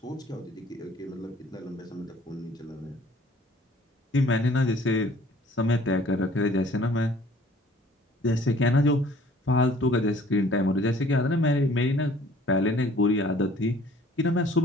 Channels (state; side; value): normal; both; correlation 0.54